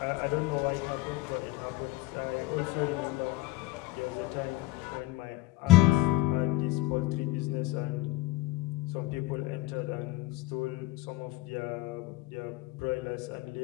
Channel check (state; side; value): quieter; right; 18.2 dB